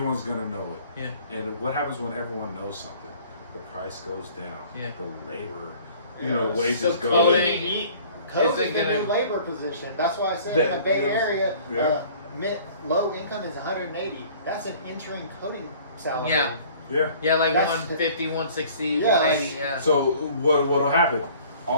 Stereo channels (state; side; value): inverted; both; correlation -0.51